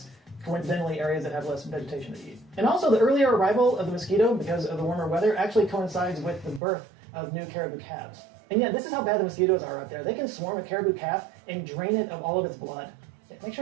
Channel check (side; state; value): left; drops out; at 6.6 s